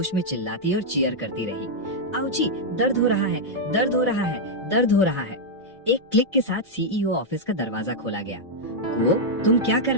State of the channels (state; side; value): normal; both; correlation -0.03